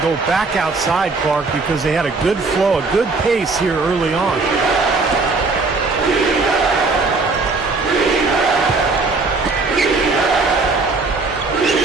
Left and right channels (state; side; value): quieter; left; 3.8 dB